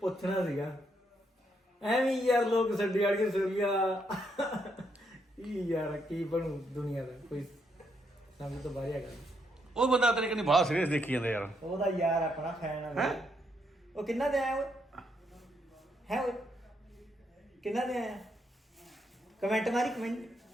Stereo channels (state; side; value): normal; both; correlation 0.77